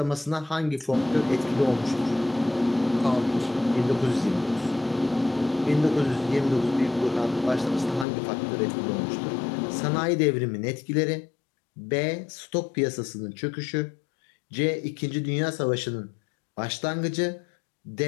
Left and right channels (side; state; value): right; drops out; at 8.1 s